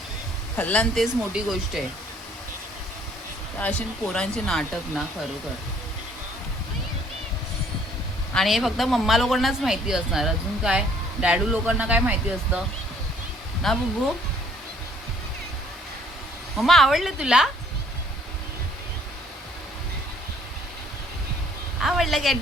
खाल्ला ना तेच मोठी गोष्ट आहे. अशी पोरांचे नाटक ना, खरोखर. आणि हे फक्त मम्मा लोकांनाच माहिती असणार. अजून काय डॅडू लोकांना काय माहिती असतं ना बुब्बू. मम्मा आवडलं तुला, आवडलं काय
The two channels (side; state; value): both; normal; correlation 0.61